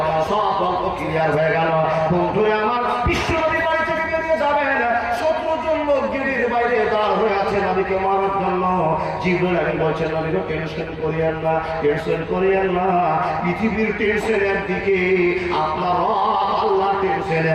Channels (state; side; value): identical; both; correlation 1.00